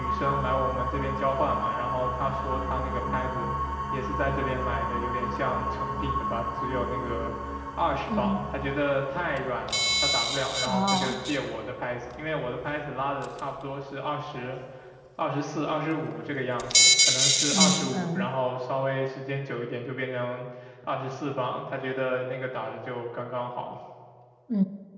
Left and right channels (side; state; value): both; identical; correlation 1.00